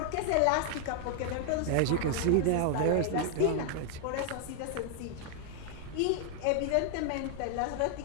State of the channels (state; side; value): different; both; correlation 0.00